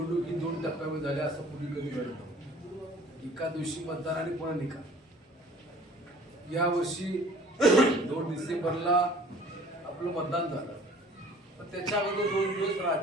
ही 2 टप्प्यामध्ये झाली असं पूर्वी कधी घडत नव्हतं. एका दिवशी मतदान आणि पुन्हा निकाल. यावर्षी 2 डिसेंबरला आपलं मतदान झालं, पण त्याच्या अगोदर 2 दिवस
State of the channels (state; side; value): normal; both; correlation 0.50